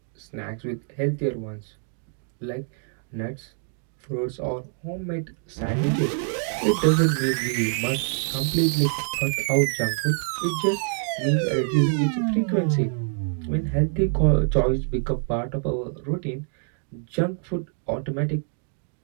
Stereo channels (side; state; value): left; silent; 56 dB below the other